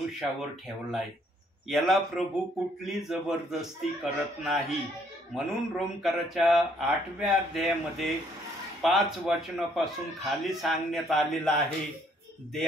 ठेवलाय. याला प्रभू कुठली जबरदस्ती करत नाही. म्हणून रोमकराच्या 8व्या अध्यायामध्ये 5 वचनापासून खाली सांगण्यात आलेलं आहे,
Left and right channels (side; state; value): both; normal; correlation 0.66